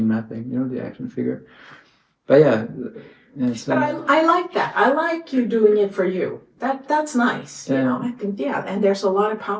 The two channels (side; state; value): both; identical; correlation 1.00